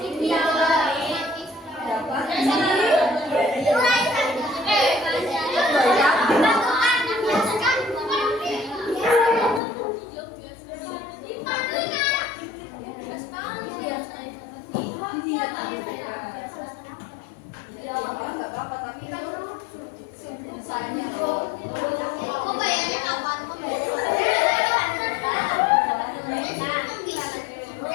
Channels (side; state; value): right; drops out; at 9.6 s